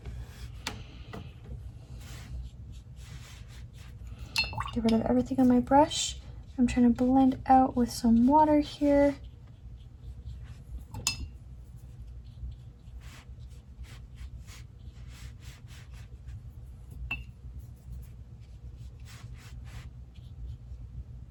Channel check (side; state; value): both; identical; correlation 1.00